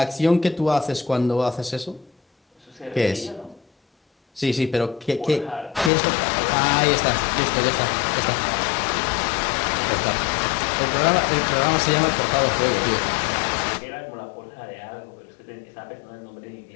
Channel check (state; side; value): drops out; right; at 5.9 s